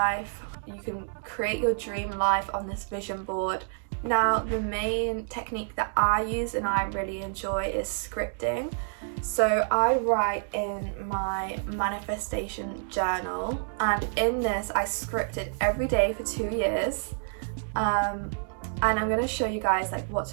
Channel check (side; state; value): left; silent; digital silence